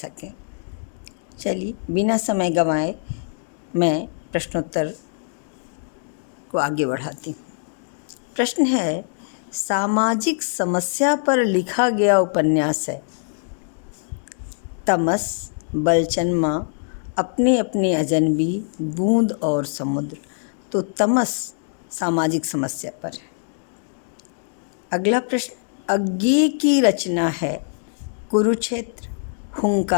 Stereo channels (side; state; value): right; silent; digital silence